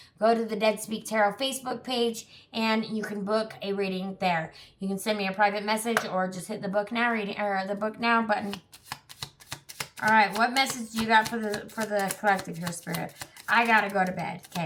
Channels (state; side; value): identical; both; correlation 1.00